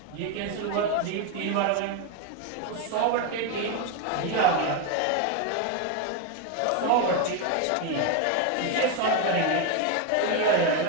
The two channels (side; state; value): both; different; correlation 0.02